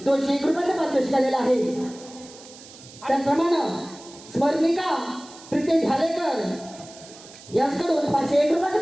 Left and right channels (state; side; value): noise; right; hiss, 19 dB below the sound